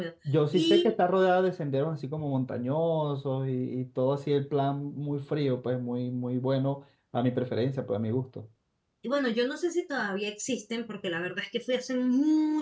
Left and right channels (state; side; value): identical; both; correlation 1.00